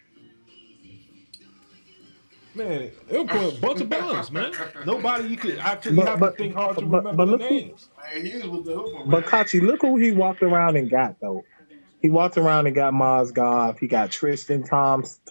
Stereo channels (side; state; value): both; inverted; correlation -1.00